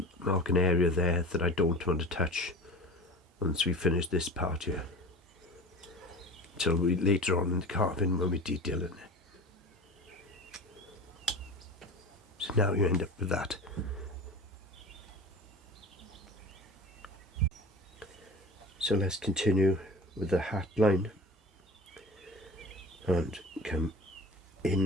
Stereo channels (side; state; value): both; normal; correlation 0.36